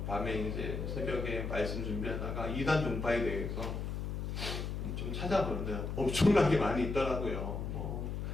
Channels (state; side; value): noise; left; hum, 3 dB below the sound